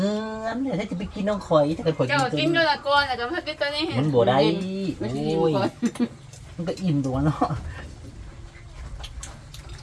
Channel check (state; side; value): identical; both; correlation 1.00